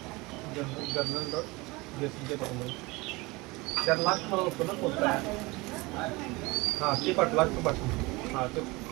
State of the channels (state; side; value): quieter; left; 23.5 dB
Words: dot जेसीच्या टाकून 4 लाख मला होतो ना पोचता. हां ते पाठवा तो पाठवून हां ते